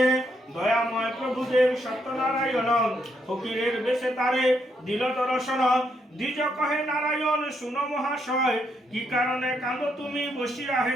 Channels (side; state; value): both; normal; correlation 0.77